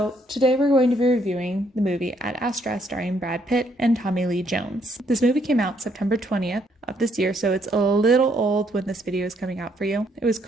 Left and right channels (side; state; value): both; normal; correlation 0.70